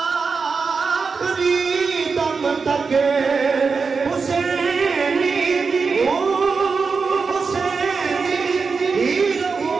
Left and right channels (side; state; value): left; quieter; 4.9 dB